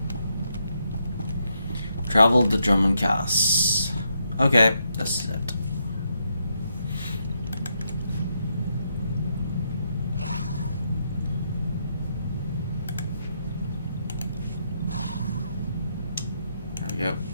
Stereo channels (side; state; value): both; inverted; correlation -0.79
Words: Travel to Drummond Cass. Okay, that's it. There we go.